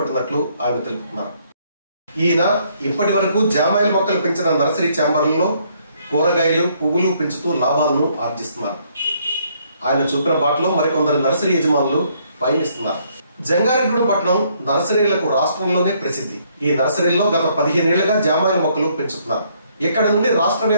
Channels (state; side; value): inverted; both; correlation -0.68